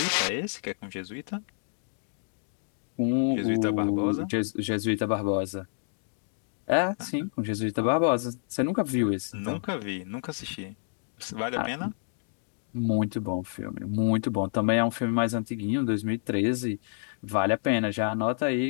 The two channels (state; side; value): silent; right; digital silence